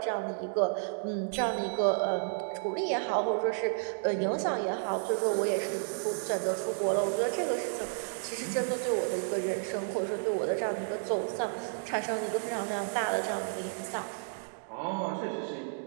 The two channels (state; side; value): silent; left; digital silence